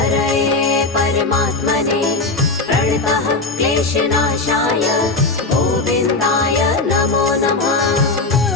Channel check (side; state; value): right; quieter; 3.4 dB